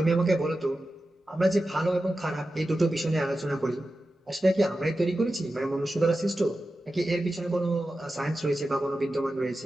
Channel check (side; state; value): both; normal; correlation 0.92